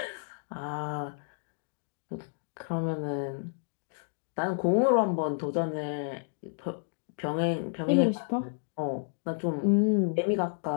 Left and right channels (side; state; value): right; silent; digital silence